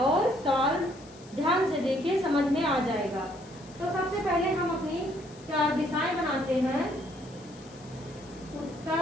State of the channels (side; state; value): left; noise; hiss, 23 dB below the sound